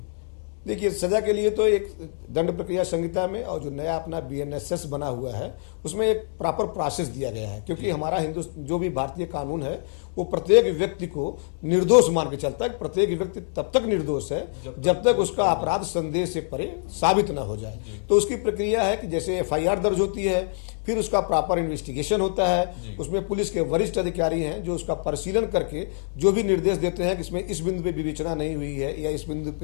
देखिए, सजा के लिए तो एक दंड प्रक्रिया संहिता में और जो नया अपना बीएनएसएस बना हुआ है उसमें एक प्रॉपर प्रोसेस दिया गया है, क्योंकि हमारा जो भी भारतीय कानून है वो प्रत्येक व्यक्ति को निर्दोष मान के चलता है। प्रत्येक व्यक्ति तब तक निर्दोष है जब तक उसका अपराध संदेह से परे साबित न हो जाए। तो उसकी प्रक्रिया है कि जैसे एफआईआर दर्ज होती है, फिर उसका प्रॉपर इन्वेस्टिगेशन होता है, उसमें पुलिस के वरिष्ठ अधिकारी हैं जो उसका परिशीलन करके जो भी निर्देश देते हैं कि इसमें इस बिंदु पे विवेचना नहीं हुई है या इस बिंदु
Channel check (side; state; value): right; silent; digital silence